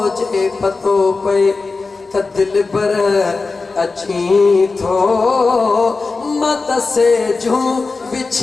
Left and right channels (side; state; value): right; quieter; 4.0 dB